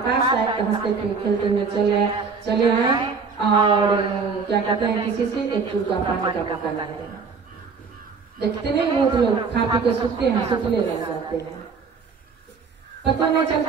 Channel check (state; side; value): quieter; left; 5.2 dB